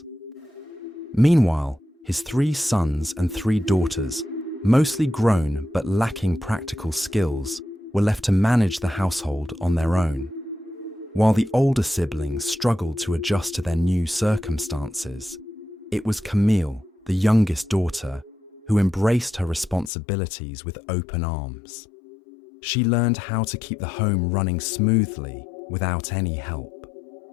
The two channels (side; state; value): right; drops out; at 19.9 s